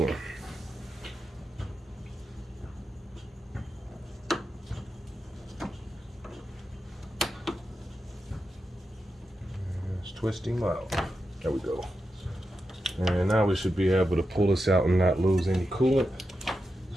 Let's twist him out. There we go. And now we should be able to pull this out and not lose any coolant.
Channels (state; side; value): normal; both; correlation 0.88